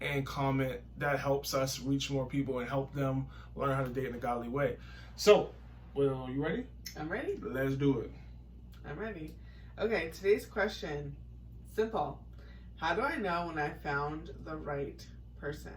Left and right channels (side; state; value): both; identical; correlation 1.00